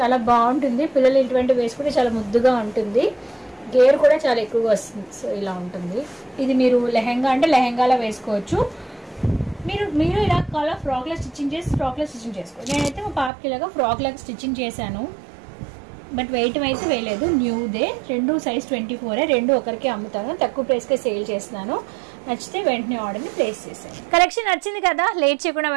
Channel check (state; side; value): drops out; left; at 13.3 s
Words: బాగుంటుంది. పిల్లలు ఇటువంటి వేసుకుంటే చాలా ముద్దుగా ఉంటుంది. గేర్ కూడా చాలా ఎక్కువగా వస్తుంది. సో ఇలా ఉంటుంది. ఇది మీరు లెహంగా అంటే లెహంగాలా వేసుకోవచ్చు. మీరు ఇలా కావాలా ఫ్రాక్లో స్టిచ్చింగ్ చేసుకోవచ్చు. నేనైతే మా పాపకి ఇలాగా ఫ్రాక్ లాగా స్టిచ్చింగ్ చేశాను. బట్ వెయిట్ అయితే వేయలేదు, న్యూదే. 2 సైజ్ 24. 2 ఒకరికి అమ్ముతాను, తక్కువ ప్రైస్కే సేల్ చేస్తున్నాను. నచ్చితే వెంటనే ఆర్డర్ని ప్లేస్ చేసేయండి. కలెక్షన్ నచ్చింది కదా, లేట్ చేయకుండా